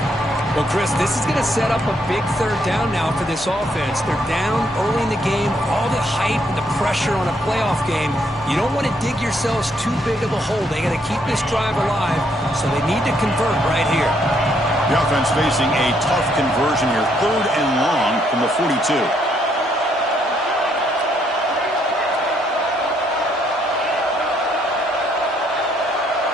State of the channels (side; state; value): both; normal; correlation 0.72